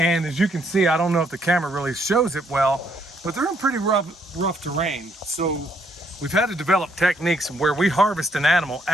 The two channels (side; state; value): both; normal; correlation 0.71